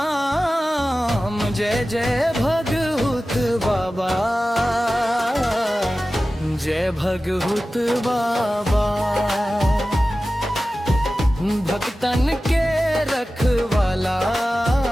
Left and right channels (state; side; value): normal; both; correlation 0.95